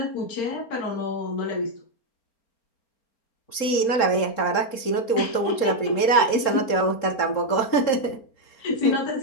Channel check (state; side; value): late; right; 3.7 ms